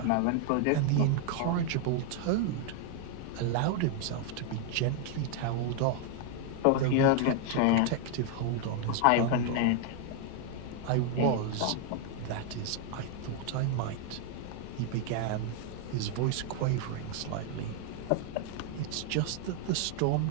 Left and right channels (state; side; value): different; both; correlation 0.00